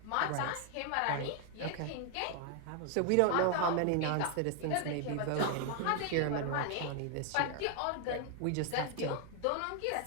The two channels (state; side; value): different; both; correlation 0.00